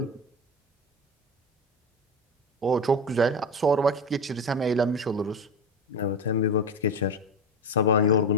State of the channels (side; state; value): both; normal; correlation 0.21